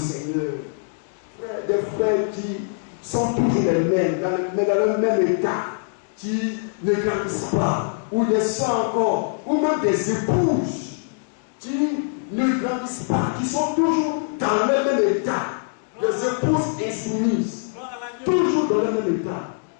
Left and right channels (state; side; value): silent; right; digital silence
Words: Des frères qui sont toujours les mêmes, mais dans le même état, qui ne grandissent pas, ou des soeurs encore, ou même des épouses qui ne grandissent pas, qui sont toujours dans le même état, des épouses insoumises, toujours dans le même état.